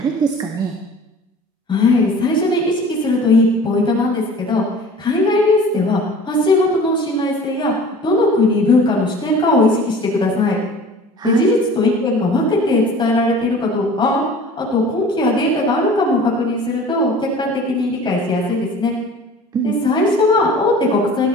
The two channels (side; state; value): both; normal; correlation 0.44